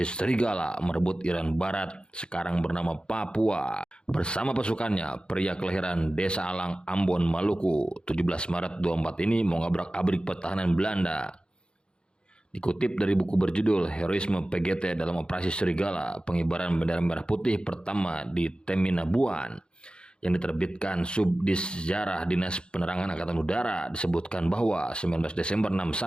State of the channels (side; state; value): right; late; 0.052 ms